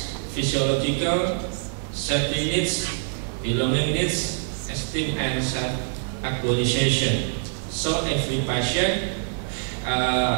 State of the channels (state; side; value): silent; left; 62 dB below the other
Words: physiological, safety needs, belonging needs, esteem and self-actualization. So every patient